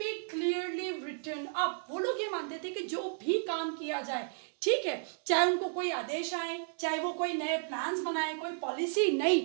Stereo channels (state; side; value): silent; left; digital silence